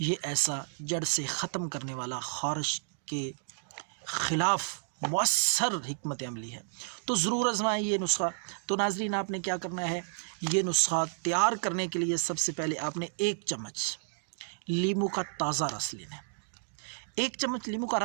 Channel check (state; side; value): silent; left; digital silence